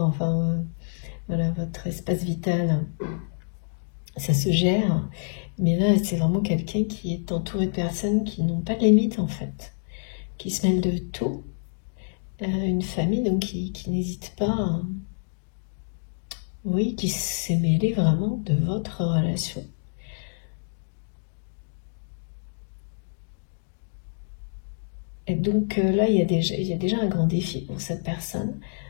enfin voilà, votre espace vital, ça se gère. Mais là, c'est vraiment quelqu'un qui est entouré de personnes qui n'ont pas de limite en fait, qui se mêlent de tout. Une famille donc qui n'hésite pas, oui, qui s'est mêlée vraiment de votre relation. Et donc là, il y a déjà un grand défi pour cette personne.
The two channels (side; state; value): right; silent; digital silence